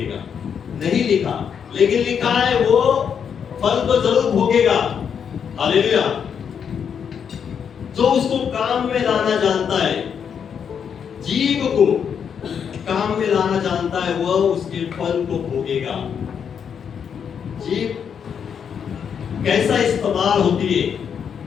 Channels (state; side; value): quieter; right; 7.4 dB